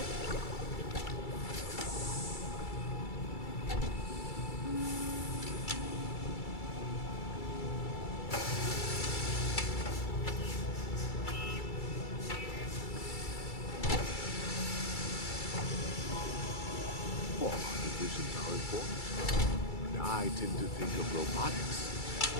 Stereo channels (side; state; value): right; late; 2.3 ms